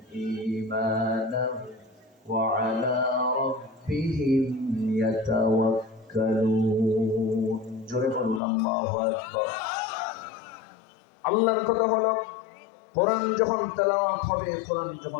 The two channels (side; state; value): right; drops out; at 8.4 s